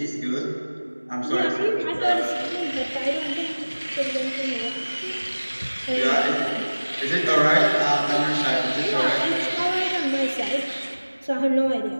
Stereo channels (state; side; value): inverted; both; correlation -1.00